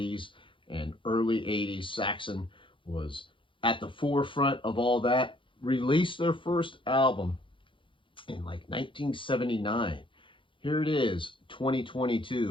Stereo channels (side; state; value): right; late; 0.25 ms